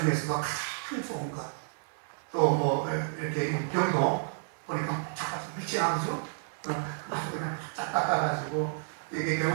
가장 좋은 것. 또 뭐 이렇게 병도 보니까 잠깐 빛이 나오죠. 아주 그냥 쫙 닦아가지고 이게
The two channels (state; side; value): silent; left; digital silence